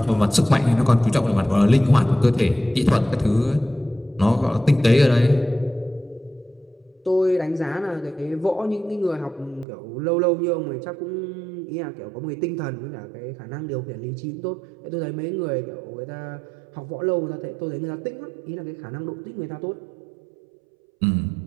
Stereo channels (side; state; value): left; drops out; at 9.7 s